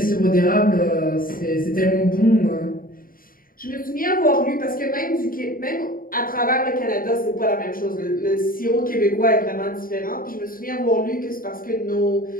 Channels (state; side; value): late; right; 0.41 ms